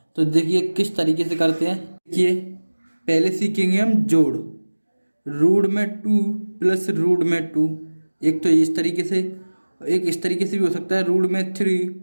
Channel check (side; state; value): both; inverted; correlation -1.00